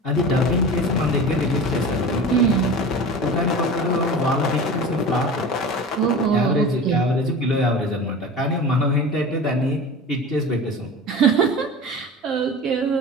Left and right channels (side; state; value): both; normal; correlation 0.33